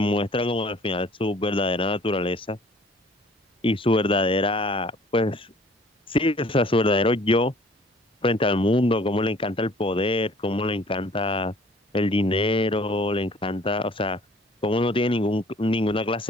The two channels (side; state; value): both; normal; correlation 0.53